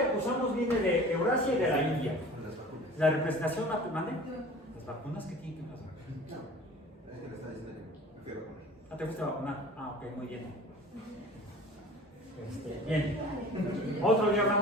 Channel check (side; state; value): both; normal; correlation 0.43